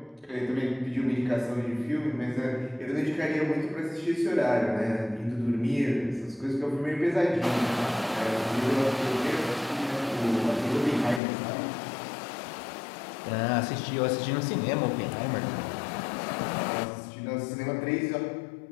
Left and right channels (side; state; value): right; drops out; at 11.2 s